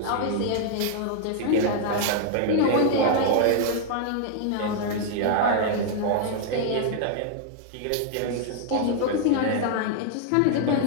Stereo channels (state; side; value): different; both; correlation 0.00